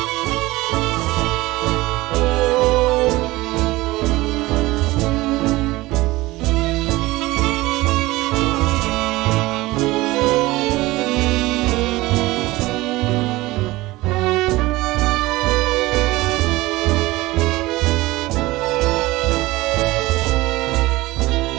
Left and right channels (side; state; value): left; quieter; 19.5 dB